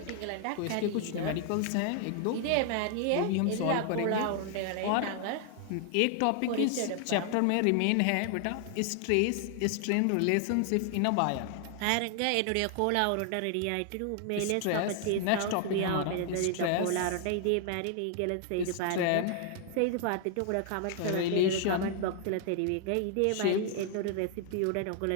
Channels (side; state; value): both; different; correlation 0.00